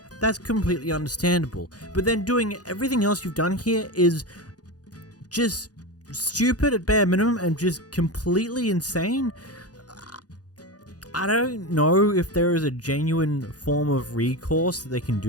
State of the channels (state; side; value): late; right; 0.68 ms